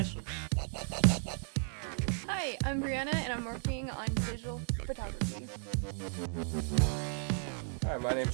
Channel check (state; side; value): silent; left; 55 dB below the other